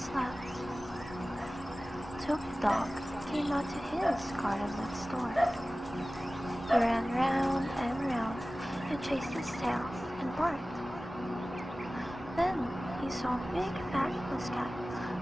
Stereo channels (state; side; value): normal; both; correlation 0.97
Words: Toby Dog came out to his garden next door. He ran round and round and chased his tail and barked. Then he saw Big Fat Puss-Cat